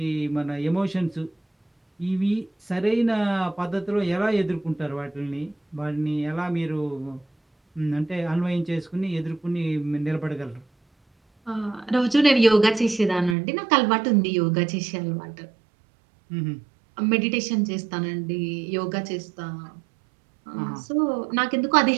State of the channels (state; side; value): drops out; left; at 13.4 s